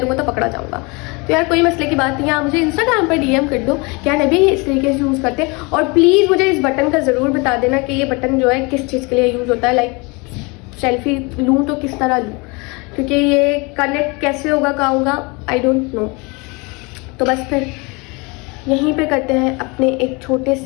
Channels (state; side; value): quieter; right; 28.1 dB